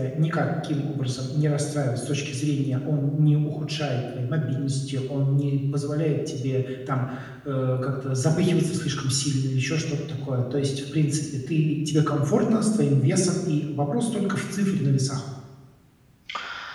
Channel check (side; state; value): both; identical; correlation 1.00